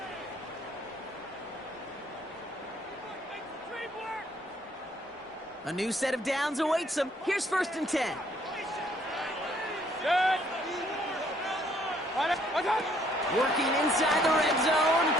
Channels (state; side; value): normal; both; correlation 0.64